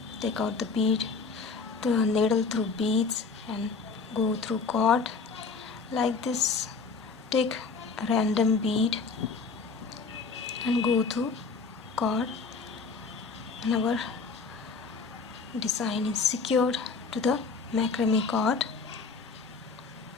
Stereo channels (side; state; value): right; quieter; 4.7 dB